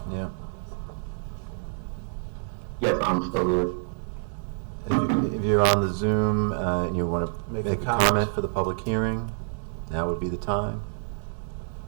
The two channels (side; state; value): left; silent; digital silence